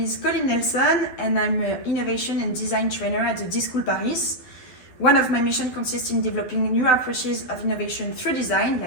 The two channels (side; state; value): right; late; 12 ms